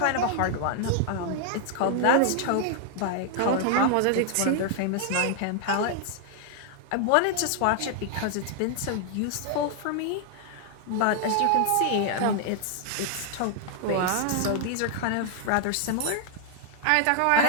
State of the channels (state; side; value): different; both; correlation 0.00